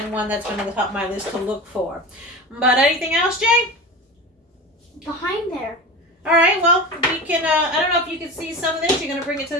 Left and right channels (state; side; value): normal; both; correlation 0.29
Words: one that's been on the top of my list to look for. But anything else, Jay? Behind there. All right, well, we can, I don't know if you can see some of this. You're going to bring it to